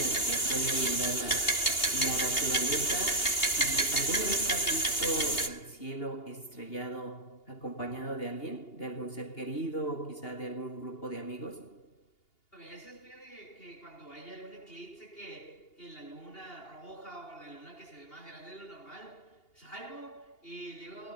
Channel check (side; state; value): right; late; 2.8 ms